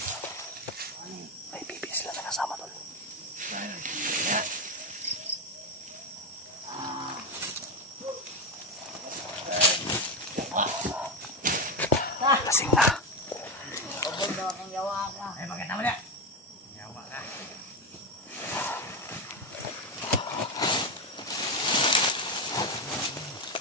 May pipi sila na kasama tol. Lasing na. Ay, maganda mo na. Yawa na.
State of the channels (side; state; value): both; normal; correlation 0.12